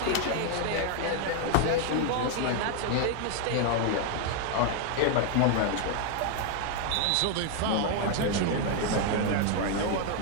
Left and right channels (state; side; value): different; both; correlation 0.00